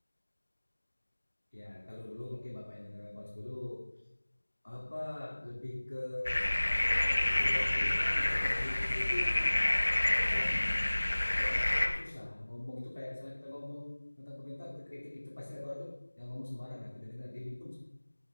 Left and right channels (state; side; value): inverted; both; correlation -1.00